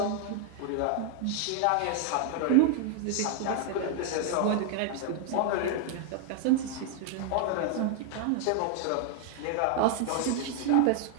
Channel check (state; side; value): different; both; correlation 0.00